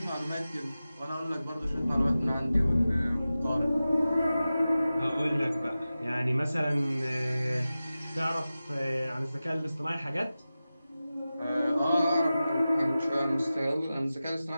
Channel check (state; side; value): inverted; both; correlation -0.95